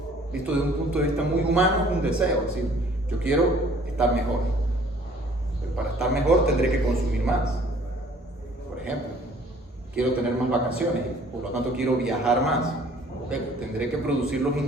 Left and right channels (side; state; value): both; normal; correlation 0.55